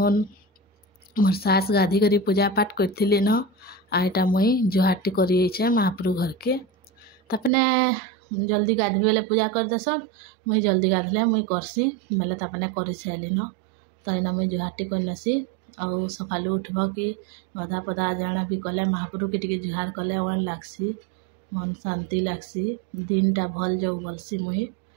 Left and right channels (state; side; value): drops out; left; at 7.5 s